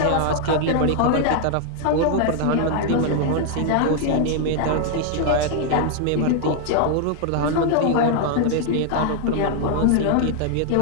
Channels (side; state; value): both; different; correlation 0.00